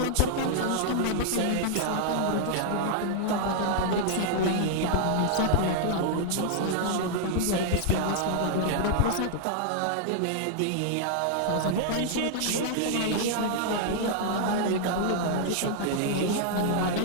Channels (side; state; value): both; different; correlation -0.01